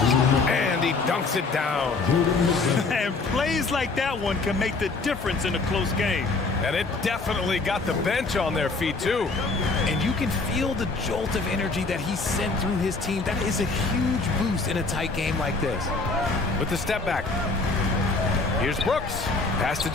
And he dunks it down. And plays like that one can make the difference in a close game. And it definitely got the bench on their feet, too. And you can feel the jolt of energy that he sent through his team. That is a huge boost in a tight game like this. With the step back. Here's Brooks. Pass to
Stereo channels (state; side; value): quieter; right; 3.8 dB